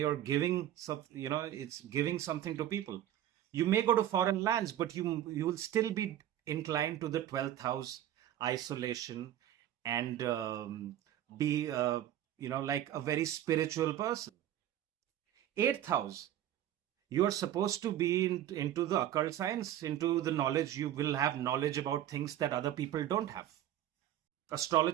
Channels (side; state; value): left; quieter; 11.9 dB